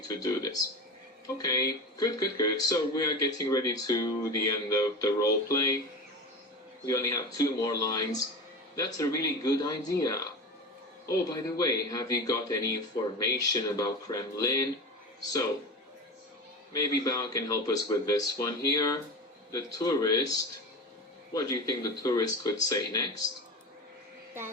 to do this. Okay, good. So we are getting ready to the end of the role play. We only have 2 more lines. That's a really good idea. Oh, by the way, have you got any information about Kremlin? So, maybe Bao can help us with this one here. The tourist. What do you think the tourist could say next?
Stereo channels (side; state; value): both; normal; correlation 0.26